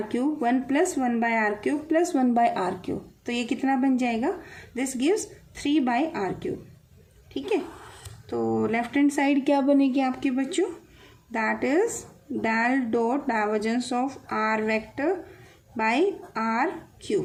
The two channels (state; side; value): identical; both; correlation 1.00